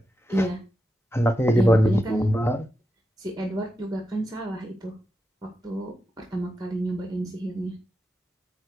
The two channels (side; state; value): both; normal; correlation 0.88